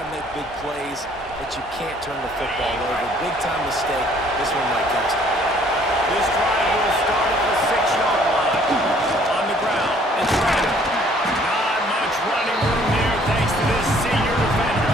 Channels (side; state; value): both; normal; correlation 0.59